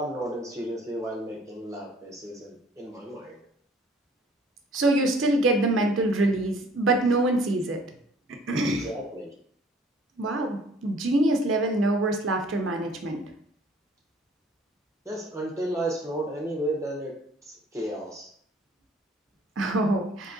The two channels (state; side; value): normal; both; correlation 0.56